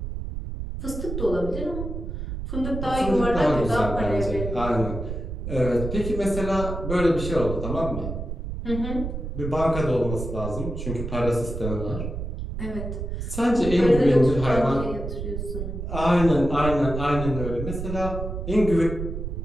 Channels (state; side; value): noise; right; rumble, 5 dB below the sound